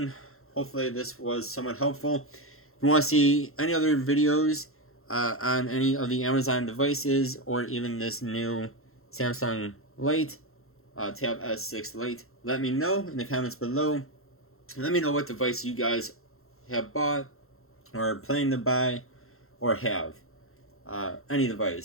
Hopefully this was somewhat helpful. If you want to see any other videos on any of the Amazon devices or even this new Samsung Lite, Tab S6 Lite. Let me know in the comments below. Let me know what device you guys have bought or planning to buy or have. Any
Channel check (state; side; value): late; right; 0.62 ms